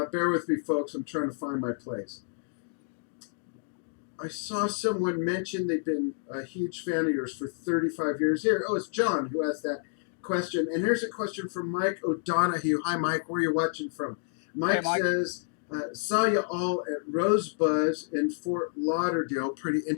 bear with me, folks. I'm trying to find my place. I saw someone mention they've been a huge fan of yours for 35 years. Here, it's John who asked that question. And here's a question from Mike O'Donohue. Hi, Mike. Where are you watching from? Mike says, saw you all at Rosebud's in Fort Lauderdale, pretty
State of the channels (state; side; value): silent; right; digital silence